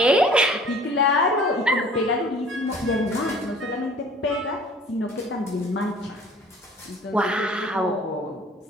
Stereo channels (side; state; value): both; normal; correlation 0.49